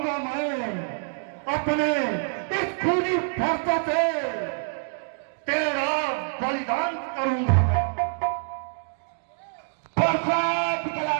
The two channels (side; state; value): left; silent; digital silence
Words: मैं अपने इस खूनी फरसा से। तेरा बलिदान करूंगा मैं। फरसा